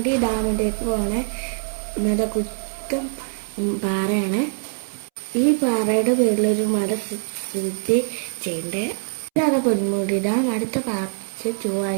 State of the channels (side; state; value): left; silent; 63 dB below the other